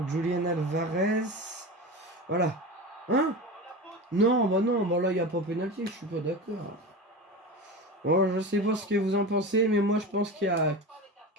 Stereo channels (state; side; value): normal; both; correlation 0.27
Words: Julian Alvarez. Voilà. Hein? Non, non, là, il n'y a pas pénalty, je suis pas d'accord. Bon, je sais pas ce que vous en pensez, mais moi, je pense que